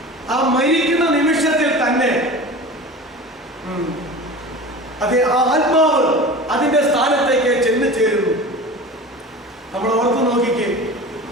ആ മരിക്കുന്ന നിമിഷത്തിൽ തന്നെ അത് ആ ആത്മാവ് അതിന്റെ സ്ഥാനത്തേക്ക് ചെന്ന് ചേരുന്നു. നമ്മൾ ഓർത്തു നോക്കിക്കേ,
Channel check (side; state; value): both; normal; correlation 0.34